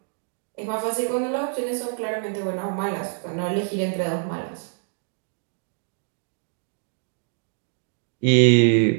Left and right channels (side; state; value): left; silent; 61 dB below the other